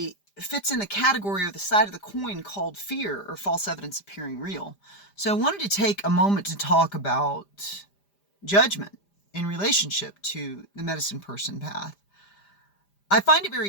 fits in the category or the side of the coin called fear, or false evidence appearing real. So I wanted to take a moment to talk about judgment in relationship to the medicine person path. I find it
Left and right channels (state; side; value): late; right; 5.0 ms